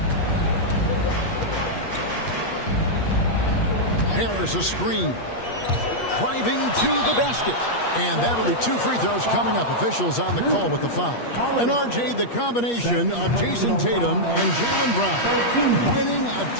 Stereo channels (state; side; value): late; right; 8.4 ms